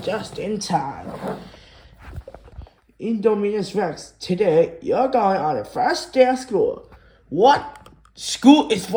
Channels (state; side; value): identical; both; correlation 1.00